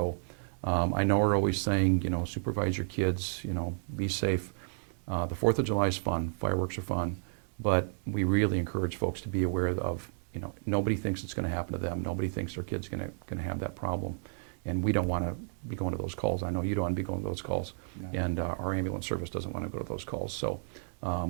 I know we're always saying, supervise your kids, be safe. The 4th of July is fun, fireworks are fun, but we really encourage folks to be aware of, nobody thinks it's going to happen to them. Nobody thinks their kid's going to have that problem. And we don't want to be going to those calls. I know you don't want to be going to those calls. No. And our ambulance service doesn't want to go to those calls. So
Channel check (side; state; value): left; silent; digital silence